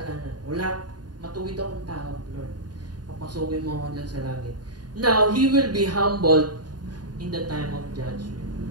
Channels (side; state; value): left; late; 0.70 ms